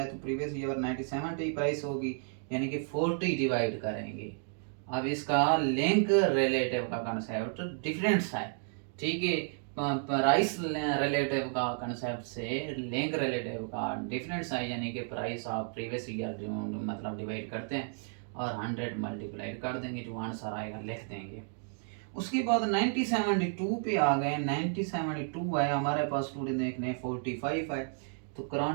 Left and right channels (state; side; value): silent; left; 56 dB below the other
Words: तो प्रीवियस ईयर 1970 प्राइस होगी यानी कि 40 डिवाइड करेंगे। अब इसका लिंक रिलेटिव का कंसेप्ट डिफरेंस है, ठीक है। प्राइस रिलेटिव का कंसेप्ट से लिंक रिलेटिव का डिफरेंस है यानी कि प्राइस ऑफ प्रीवियस ईयर जो मतलब डिवाइड करते हैं और 100 मल्टीप्लाइड कर देंगे, जो आंसर आएगा लिख देंगे। उसके बाद 1972 पे आ गए। 1972 है हमारे पास स्टूडेंट देखने 45 है तो